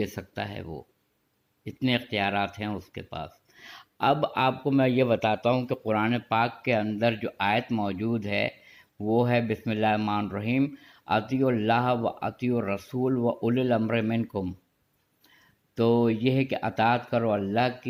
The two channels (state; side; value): identical; both; correlation 1.00